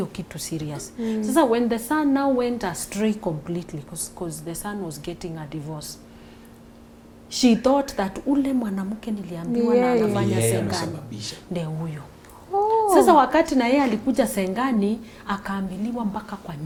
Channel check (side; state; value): both; identical; correlation 1.00